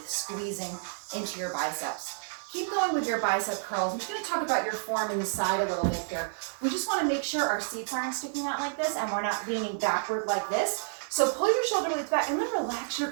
squeezing into your biceps. Keep going with your bicep curls. I'm just going to talk about your form in the side a little bit here. We just want to make sure our seats aren't sticking out like this and we're not leaning backward like this. So pull your shoulder blades back and then relax your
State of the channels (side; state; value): left; silent; digital silence